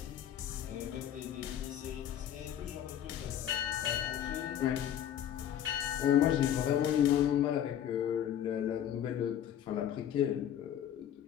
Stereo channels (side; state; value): right; quieter; 10.3 dB